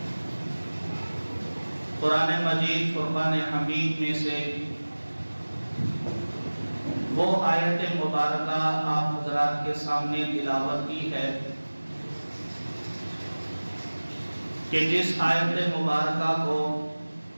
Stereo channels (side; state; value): both; inverted; correlation -1.00